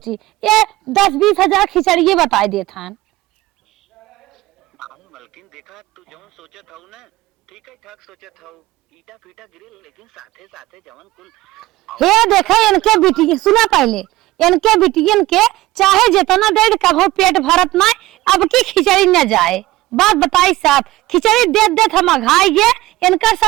ये 10-20 हजार खिचड़ी बताई दे था मलकिन देखा तू जो सोचा था ना ठीक है ठाक सोचा था ईटा फीटा गिरे लेकिन साथे साथे जवन कुल हे देखा इनके बिटिया सुना पहले इनके बिटियन के चाहे जितना दे कभो पेट भरत ना अब की खिचड़ी न जाए बात बताई साहब खिचड़ी दे दे हम अघाई गे इनका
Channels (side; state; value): left; quieter; 17.7 dB